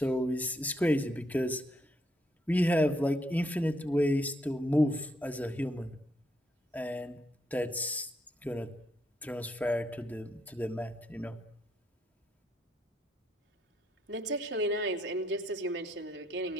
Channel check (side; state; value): both; normal; correlation 0.75